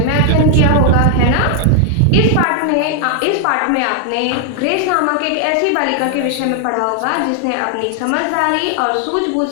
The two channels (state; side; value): different; both; correlation 0.00